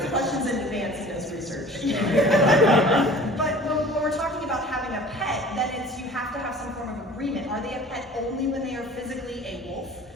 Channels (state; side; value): normal; both; correlation 0.45